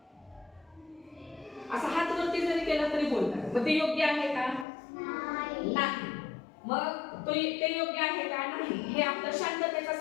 असा हात वरती जरी केला तरी बोलतात. मग ते योग्य आहे का? नाही. मग ते योग्य आहे का? नाही. हे आपलं शांततेचा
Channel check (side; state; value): right; drops out; at 4.7 s